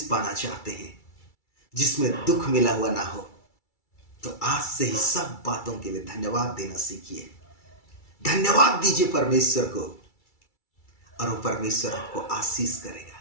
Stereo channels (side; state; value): right; late; 2.3 ms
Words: पाना चाहते हैं जिसमें दुख मिला हुआ ना हो, तो आज से ही सब बातों के लिए धन्यवाद देना सीखिए। धन्यवाद दीजिए परमेश्वर को और वो परमेश्वर आपको आशीष करेगा।